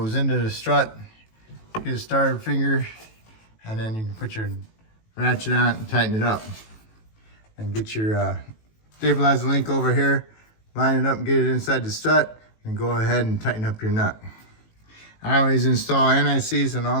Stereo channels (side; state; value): right; late; 18 ms